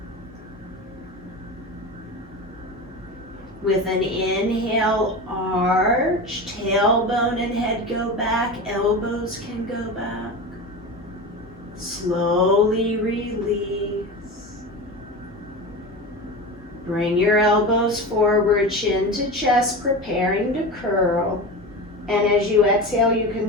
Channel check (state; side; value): normal; both; correlation 0.27